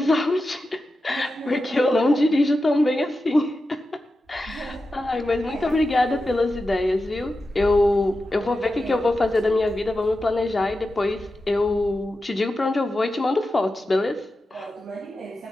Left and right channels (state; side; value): normal; both; correlation 0.91